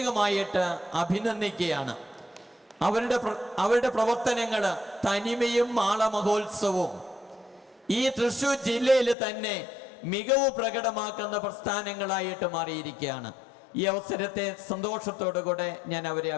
അഭിനന്ദിക്കുകയാണ്. അവരുടെ പ്രവർത്തനങ്ങൾ, തനിമയും മാള മഹോത്സവവും ഈ തൃശ്ശൂർ ജില്ലയിൽ തന്നെ മികവ് പ്രകടമാക്കുന്ന പ്രസ്ഥാനങ്ങളായിട്ട് മാറിയിരിക്കുകയാണ്. ഈ അവസരത്തെ സന്തോഷത്തോടുകൂടെ ഞാൻ അവരെ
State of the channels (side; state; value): right; drops out; at 9.2 s